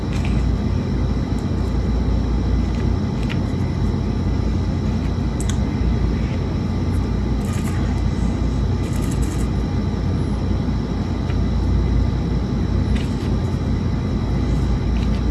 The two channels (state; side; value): identical; both; correlation 1.00